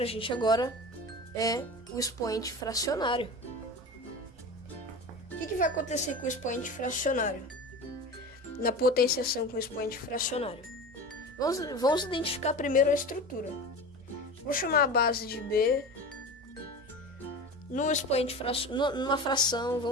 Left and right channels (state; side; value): normal; both; correlation 0.31